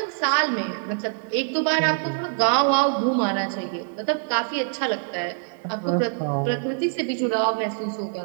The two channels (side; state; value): left; silent; 62 dB below the other